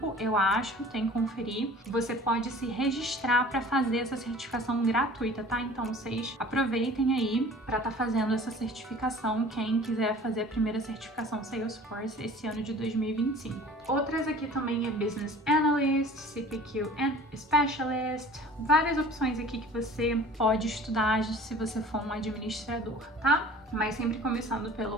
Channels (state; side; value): normal; both; correlation 0.45